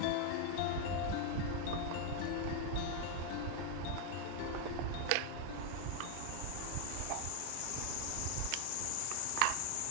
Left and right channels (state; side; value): different; both; correlation 0.01